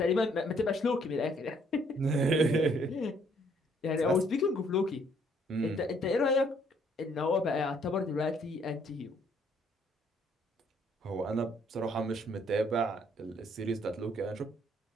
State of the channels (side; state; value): both; normal; correlation 0.65